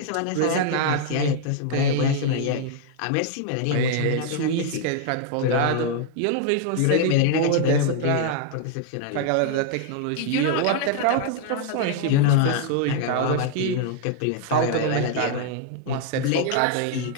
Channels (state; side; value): different; both; correlation 0.00